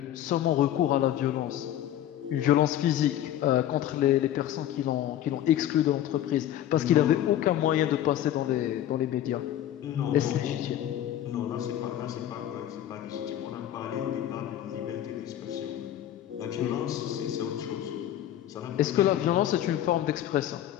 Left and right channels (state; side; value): quieter; right; 11.9 dB